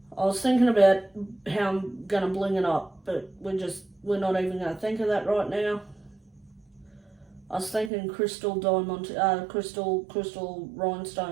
I was thinking about how I'm going to bling it up, but we're not even going to think of that right now. I was thinking crystal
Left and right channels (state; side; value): drops out; left; at 7.9 s